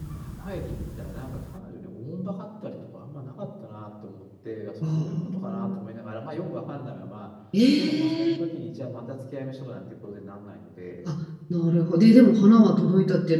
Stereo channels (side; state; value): both; identical; correlation 1.00